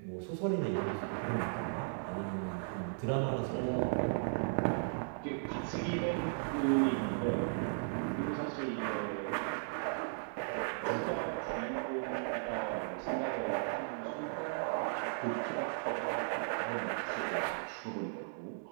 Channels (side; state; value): left; silent; digital silence